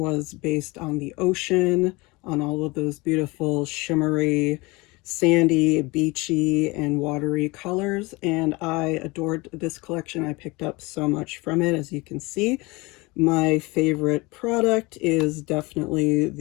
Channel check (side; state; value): right; quieter; 24.2 dB